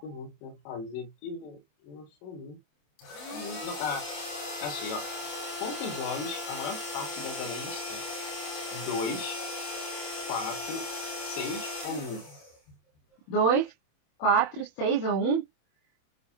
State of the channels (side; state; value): right; late; 27 ms